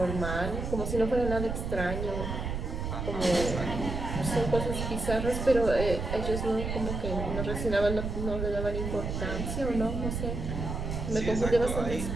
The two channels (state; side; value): noise; right; rumble, 4 dB below the sound